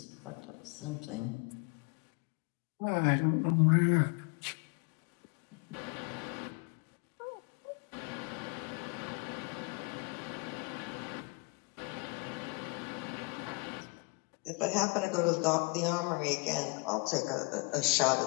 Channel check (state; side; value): quieter; right; 30.1 dB